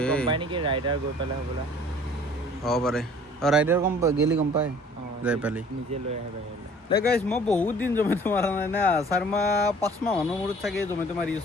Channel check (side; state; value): both; normal; correlation 0.51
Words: গম পাই নেকি ৰাইডাৰ গৈ পেলাই হ'বলা হ'ব পাৰে ৰাইডাৰ গেলি গম পায় যাই পালি নিজে লৈ আহে বাহিৰলৈ দে গাইছ মই বহুত দিন জমেটো মাৰা নাই না 4 মাহ 5 মাহ মানৰ মূৰত চাগে জমেটো মাৰি